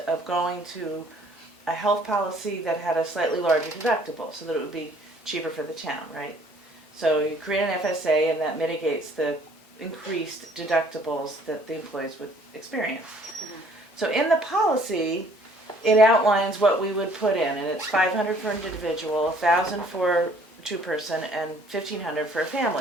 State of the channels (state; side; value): normal; both; correlation 0.58